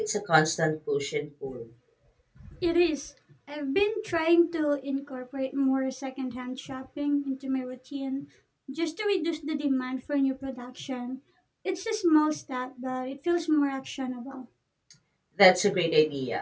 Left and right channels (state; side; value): identical; both; correlation 1.00